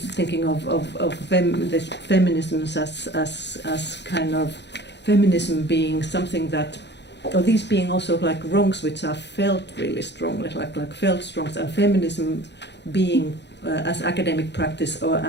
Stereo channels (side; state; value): right; late; 0.50 ms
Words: of this feminisms as kind of feminism being something that, or these being also like wrongs which are felt really strongly, like felt wrongs, and feminism being as academic practice